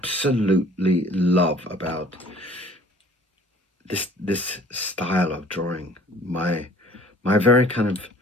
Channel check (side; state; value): both; normal; correlation 0.52